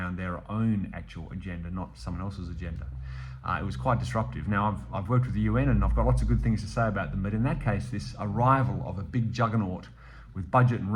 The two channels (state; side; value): identical; both; correlation 1.00